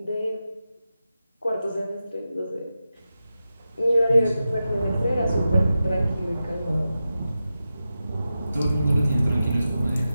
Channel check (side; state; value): both; inverted; correlation -0.91